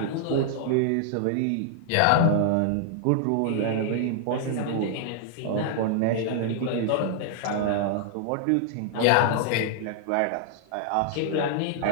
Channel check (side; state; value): both; different; correlation -0.01